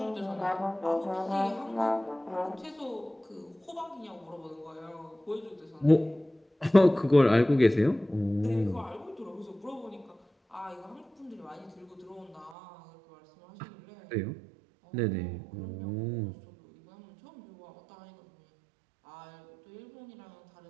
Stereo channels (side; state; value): left; drops out; at 12.6 s